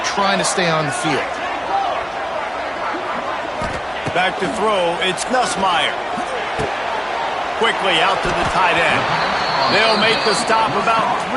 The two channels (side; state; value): both; identical; correlation 1.00